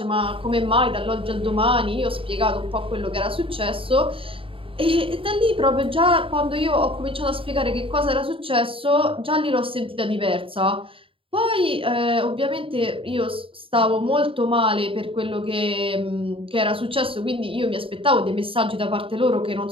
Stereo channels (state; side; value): late; left; 0.26 ms